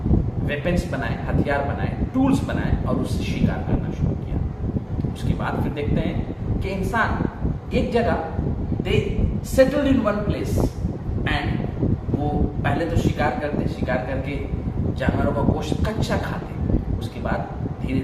वेपन्स बनाए, हथियार बनाए, टूल्स बनाए और उससे शिकार करना शुरू किया। उसके बाद फिर देखते हैं कि इंसान एक जगह, they settled in one place, and वो पहले तो शिकार करते, शिकार करके जानवरों का गोश्त कच्चा खाते। उसके बाद धीरे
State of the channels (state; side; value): identical; both; correlation 1.00